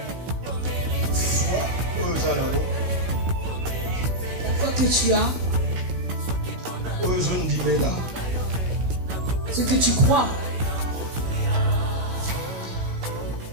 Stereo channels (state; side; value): late; left; 16 ms